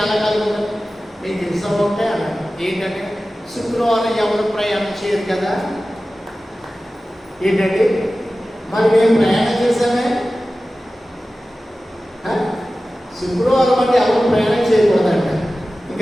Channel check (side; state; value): both; normal; correlation 0.96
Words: ఖాళీగా ఉంటుంది. మీకు ఇష్టం ఉంటే అన్నాడు. ఏంటంటే శుక్రవారం ఎవరు ప్రయాణం చేయరు కదా. ఏంటంటే మరి మేము ప్రయాణం చేశామే, శుక్రవారం అంటే ఎవరు ప్రయాణం చేయకూడదంట.